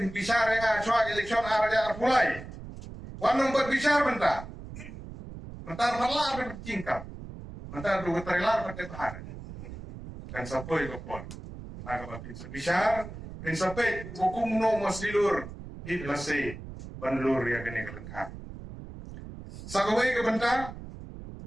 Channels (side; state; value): right; noise; rumble, 12 dB below the sound